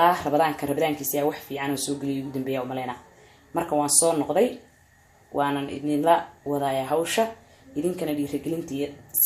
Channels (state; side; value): identical; both; correlation 1.00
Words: rabadaankiisa wax fiican oo soo geliyo ugu dambeeya u maleena marka waan soo noqday waanan idinla wadaaya hawsha إذن كان لي رجلنتي